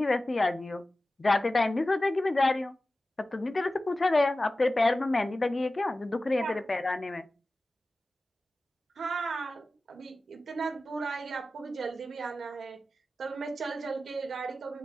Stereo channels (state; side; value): normal; both; correlation 0.95